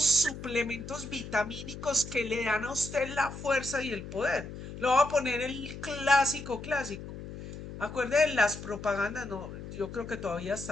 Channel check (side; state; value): left; noise; hum, 11 dB below the sound